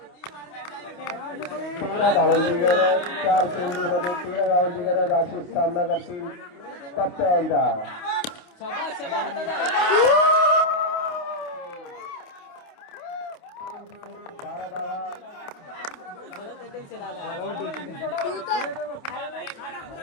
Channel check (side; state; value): right; late; 28 ms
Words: 13 धावांची गरज. 4 चेंडू मध्ये 13 धावांची गरज. अशी सामना करतील पप्प्या यांचा.